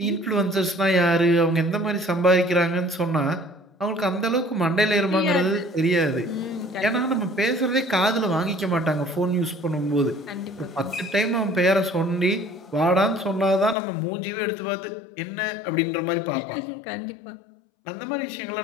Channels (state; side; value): drops out; right; at 13.8 s